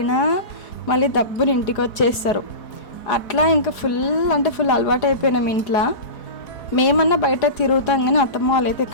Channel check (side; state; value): right; late; 4.8 ms